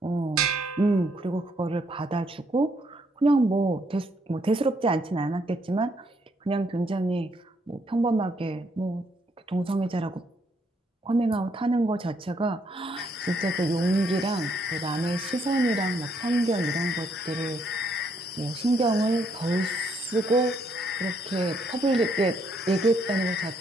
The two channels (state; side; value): normal; both; correlation 0.72